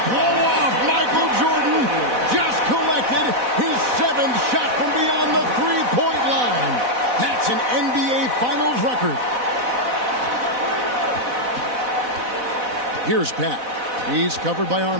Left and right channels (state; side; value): late; left; 4.0 ms